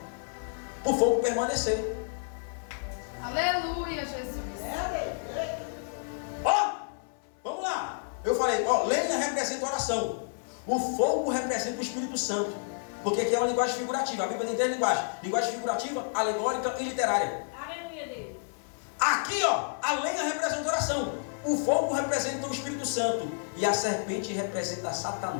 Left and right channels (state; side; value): silent; right; 58 dB below the other